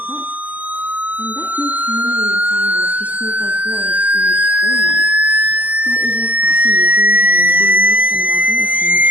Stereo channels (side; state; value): left; late; 0.079 ms